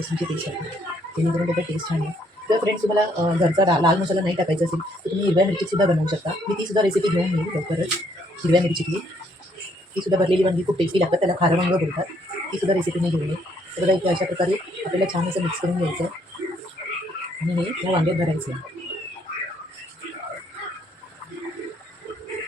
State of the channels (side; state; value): both; normal; correlation 0.69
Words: पेस्ट टाकणार, जेणेकरून त्याचा टेस्ट छान आहे. जर फ्रेंड्स तुम्हाला घरचा लाल मसाला नाही टाकायचा असेल तर तुम्ही हिरव्या मिरचीसुद्धा बनवू शकता. मी तीसुद्धा रेसिपी घेऊन येईल लवकरच. हिरव्या मिरचीतली तीसुद्धा भरलेली वांगी खूप टेस्टी लागतात, त्याला खारं वांगं बोलतात. तीसुद्धा रेसिपी मी घेऊन येईल. तर बघा इथे अशा प्रकारे आपल्याला छान असं मिक्स करून घ्यायचं आणि हे या वांग्यात भरायचं.